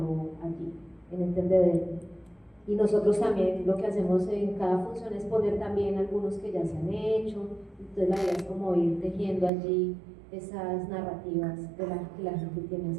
allí, en el tendedero. Y nosotros también lo que hacemos en cada función es poner también algunos que ya se han hecho, entonces la idea es como ir tejiendo allí esas narrativas que la gente tiene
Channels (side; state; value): left; drops out; at 9.5 s